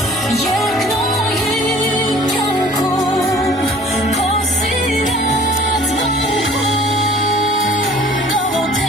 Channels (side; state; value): both; normal; correlation 0.50